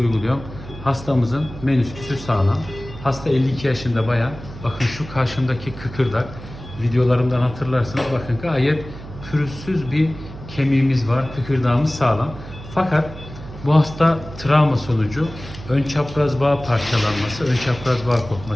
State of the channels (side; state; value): right; noise; hum, 14 dB below the sound